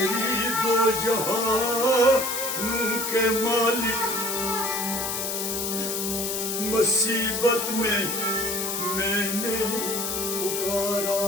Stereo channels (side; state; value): left; noise; hiss, 2 dB below the sound